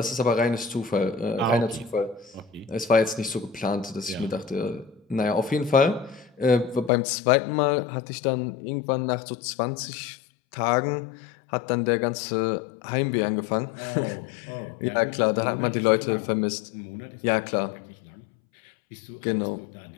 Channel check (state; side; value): drops out; right; at 6.9 s